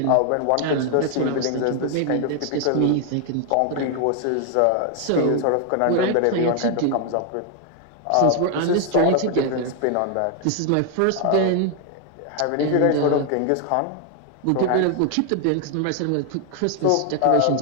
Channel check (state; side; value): different; both; correlation 0.00